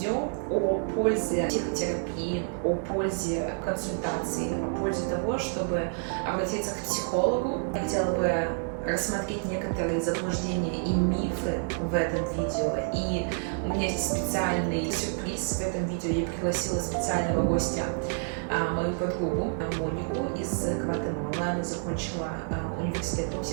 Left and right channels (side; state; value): left; silent; 59 dB below the other